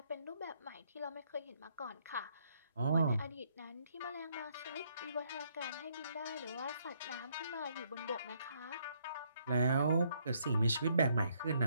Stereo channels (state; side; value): inverted; both; correlation -0.71